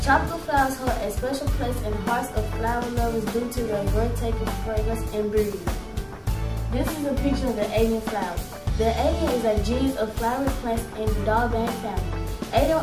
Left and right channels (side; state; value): both; identical; correlation 1.00